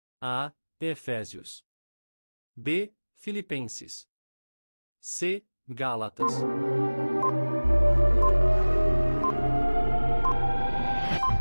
A. Efésios. B. Filipenses. C. Gálatas.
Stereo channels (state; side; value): inverted; both; correlation -1.00